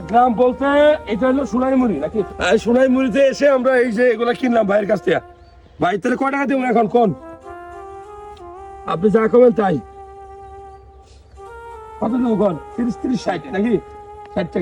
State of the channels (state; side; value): identical; both; correlation 1.00